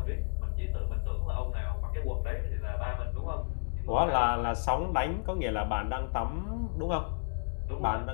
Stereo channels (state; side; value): silent; right; digital silence